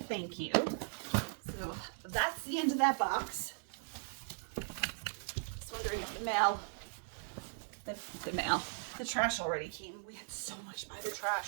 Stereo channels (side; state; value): left; silent; digital silence